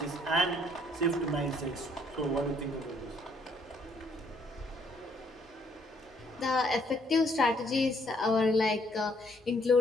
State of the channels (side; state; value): both; normal; correlation 0.67